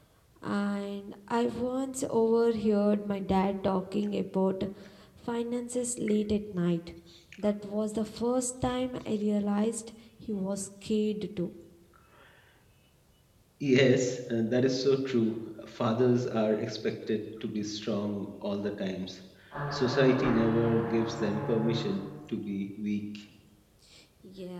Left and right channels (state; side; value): identical; both; correlation 1.00